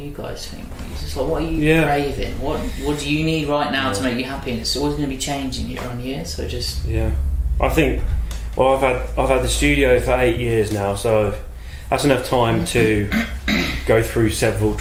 guys think? It's just like, what are you craving? What do you need right now to make you happy? And it's always going to be changing year on year, so just... Yeah. I think, well, I've had the studio for 8 years now, so that's enough time to go through several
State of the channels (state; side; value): identical; both; correlation 1.00